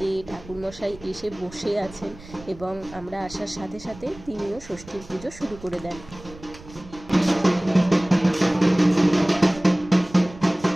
ঠাকুরমশাই এসে বসে আছেন এবং আমরা আসার সাথে সাথে তিনিও ষষ্ঠীর পুজো শুরু করে দেন।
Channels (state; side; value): noise; right; rumble, 19 dB below the sound